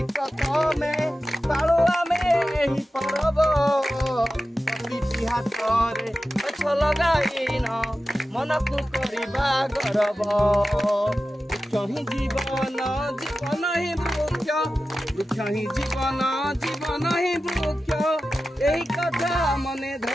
प्रथमे पाळु आमे एही परब। प्रति हातरे गछ लगाइन मनकु करिबा गर्व। वृक्ष ही जीवन जीवन ही वृक्ष वृक्ष ही जीवन जीवन ही वृक्ष यही कथा मने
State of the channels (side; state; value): both; normal; correlation 0.93